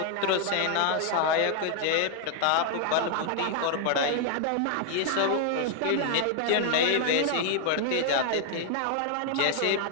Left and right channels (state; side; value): different; both; correlation 0.00